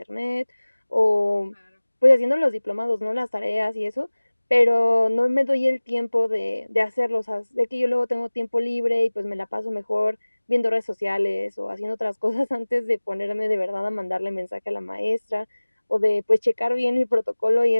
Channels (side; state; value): both; inverted; correlation -1.00